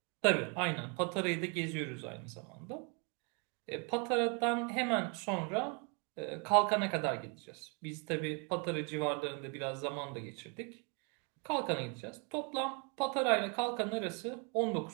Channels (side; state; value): left; quieter; 34.7 dB